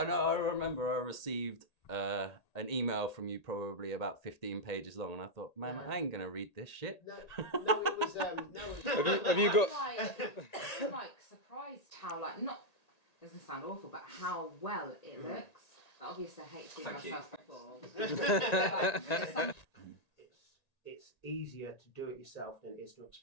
remember I received an email from you probably about 15 pages long, and I thought, man, I ain't gonna read this shit. No, it was Have you got? I'm like surprised how not doesn't sound awful, but how well it looks. Obviously, I hate seeing myself before. It's easier to do it yourself than it is to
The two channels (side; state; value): right; late; 1.9 ms